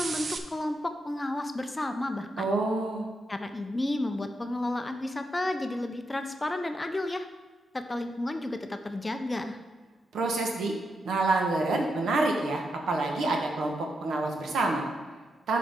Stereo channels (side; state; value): both; normal; correlation 0.84